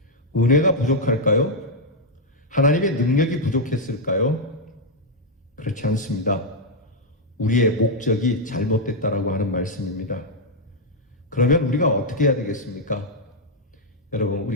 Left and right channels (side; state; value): both; normal; correlation -0.02